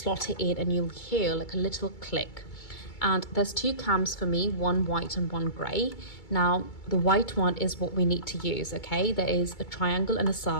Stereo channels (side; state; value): right; late; 2.3 ms